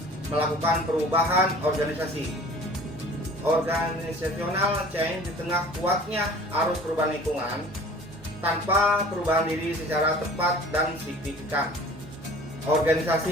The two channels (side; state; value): both; normal; correlation 0.46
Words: melakukan perubahan organisasi. Organizational change di tengah kuatnya arus perubahan lingkungan tanpa perubahan diri secara tepat dan signifikan,